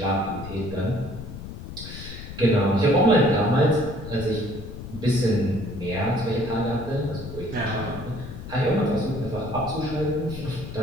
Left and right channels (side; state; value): left; noise; rumble, 11 dB below the sound